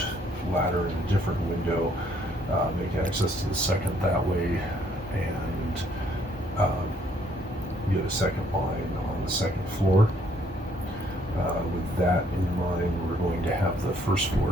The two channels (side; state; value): both; normal; correlation 0.66